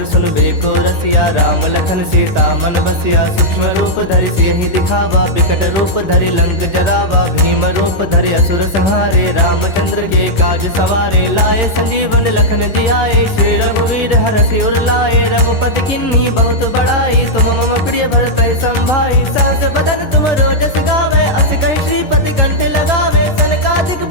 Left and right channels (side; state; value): right; late; 10 ms